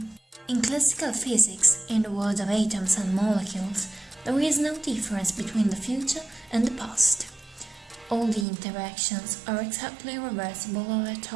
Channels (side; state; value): left; drops out; at 8.5 s